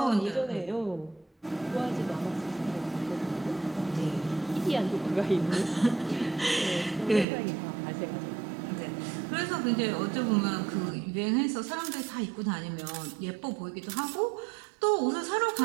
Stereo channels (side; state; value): left; drops out; at 7.2 s